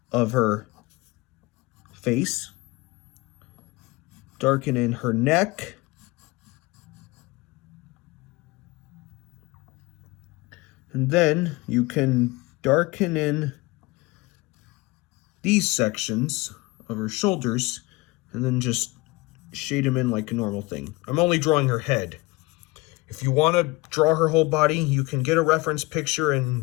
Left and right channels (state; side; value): quieter; right; 22.7 dB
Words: of her face, darken in her neck, and then you can darken in these sections of her shoulders and then just shade them in like a normal thing. I'm only drawing her head. If you want to draw her whole body, you can get a reference picture